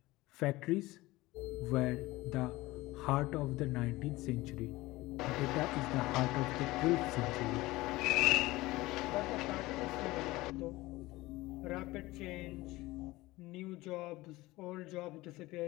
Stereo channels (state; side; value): quieter; right; 19.5 dB